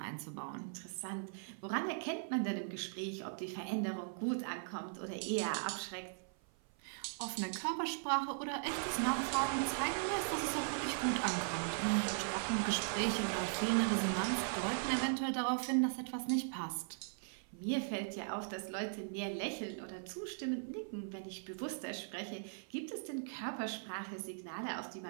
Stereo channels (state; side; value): silent; left; 52 dB below the other